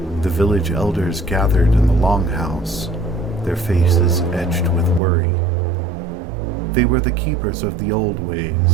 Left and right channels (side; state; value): left; drops out; at 5.0 s